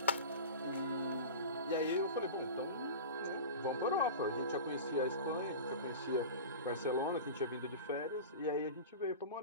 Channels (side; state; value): both; inverted; correlation -0.31